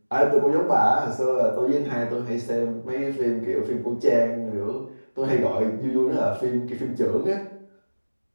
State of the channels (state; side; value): inverted; both; correlation -1.00